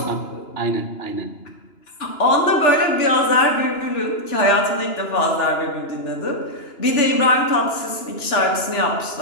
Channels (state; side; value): late; right; 2.9 ms